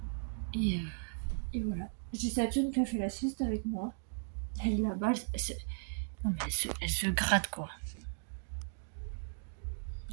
Et voilà. J'ai Saturne qui a fait la sieste avec moi. Elle est là-bas. Non mais elle se gratte quoi.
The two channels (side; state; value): left; silent; digital silence